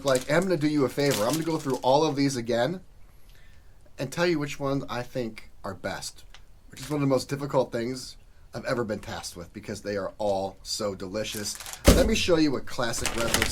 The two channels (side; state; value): both; identical; correlation 1.00